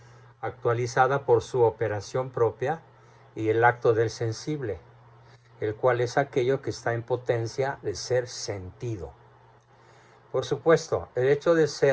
actualizada por su operación propia, y el acto del sensible, el cual es aquello que está en potencia de ser sentido. Por supuesto, el hecho de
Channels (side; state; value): both; identical; correlation 1.00